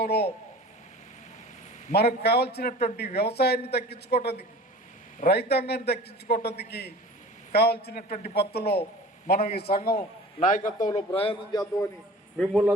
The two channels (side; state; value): both; normal; correlation 0.41